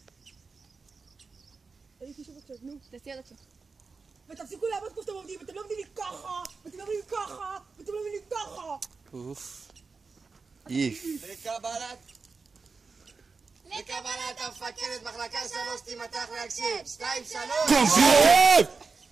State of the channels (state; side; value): quieter; left; 4.6 dB